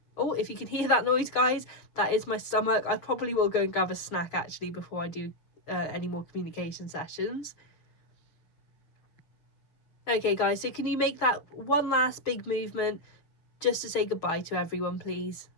Oh, if you can hear that noise, guys, that is my stomach. I probably will go and grab a snack actually before I do any more communication sessions. Okay, guys, so can you make that one last big movement just to say goodbye to everyone, please?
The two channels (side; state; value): right; late; 6.4 ms